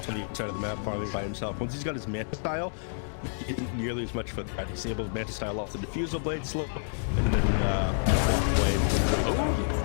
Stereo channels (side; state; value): right; silent; digital silence